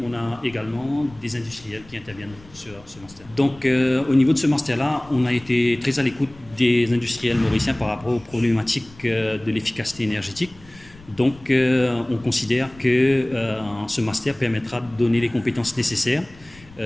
on a également des industriels qui interviennent sur ce master. Donc au niveau de ce master-là, on a été très à l'écoute des industriels mauriciens par rapport aux problématiques de l'efficacité énergétique. Donc on considère que ce master permettra de donner les compétences nécessaires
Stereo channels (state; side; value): noise; left; rumble, 23 dB below the sound